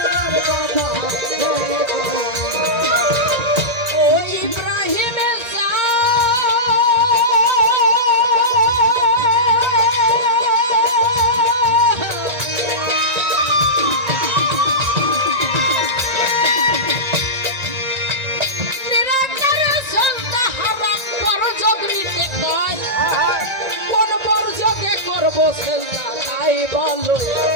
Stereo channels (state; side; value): late; left; 1.9 ms